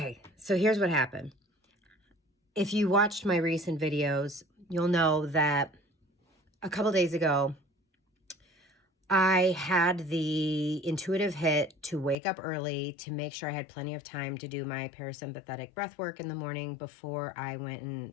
here's what happened. If you watched my recent videos, you'll know that a couple days ago, I had the intuitive hit to wake up early to make sure I had plenty of time to do my parasympathetic breath work in the morning before I went and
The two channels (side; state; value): right; drops out; at 12.2 s